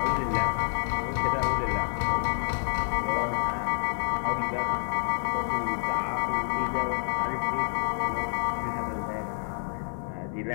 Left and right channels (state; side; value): silent; right; digital silence